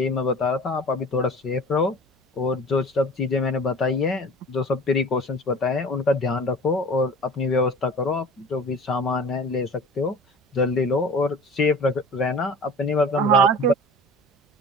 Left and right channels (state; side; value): normal; both; correlation 0.41